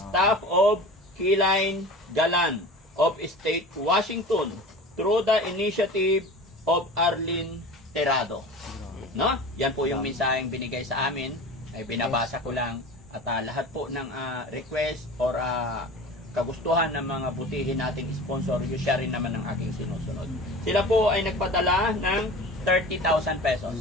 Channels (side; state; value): both; normal; correlation 0.36